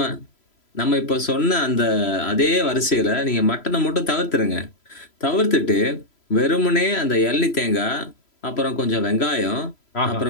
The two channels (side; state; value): right; late; 3.0 ms